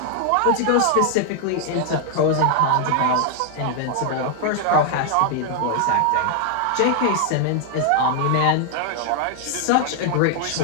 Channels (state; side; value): different; both; correlation 0.00